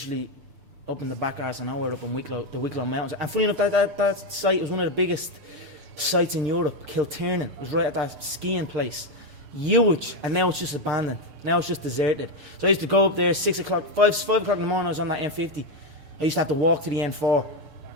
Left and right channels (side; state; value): left; late; 6.8 ms